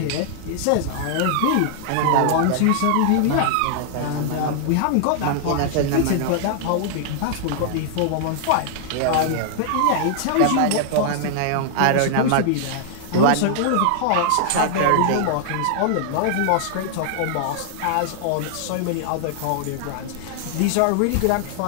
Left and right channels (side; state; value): both; different; correlation -0.01